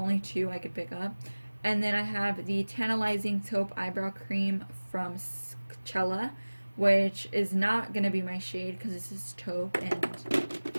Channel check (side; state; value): both; inverted; correlation -1.00